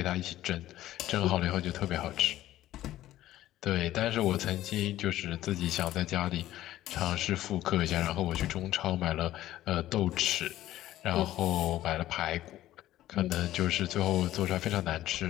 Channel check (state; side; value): quieter; right; 14.2 dB